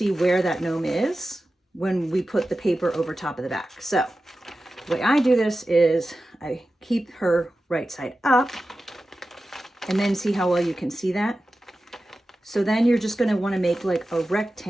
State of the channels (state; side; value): normal; both; correlation 0.94